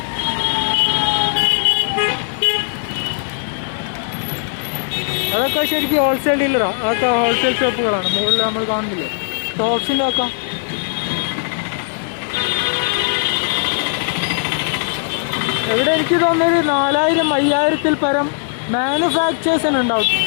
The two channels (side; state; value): right; silent; digital silence